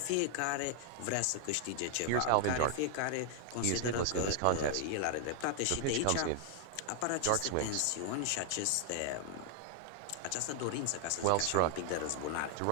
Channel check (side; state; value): both; different; correlation 0.00